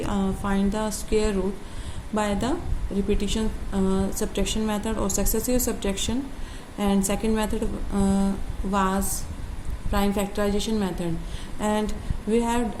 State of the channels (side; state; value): both; identical; correlation 1.00